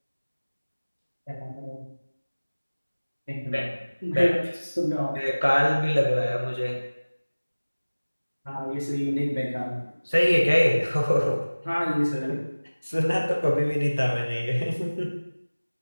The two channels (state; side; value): inverted; both; correlation -1.00